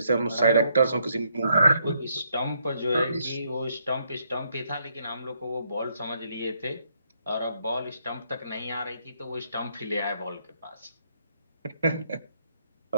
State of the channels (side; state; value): both; inverted; correlation -0.74